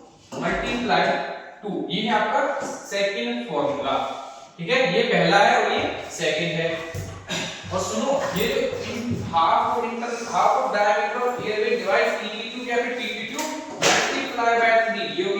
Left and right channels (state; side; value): identical; both; correlation 1.00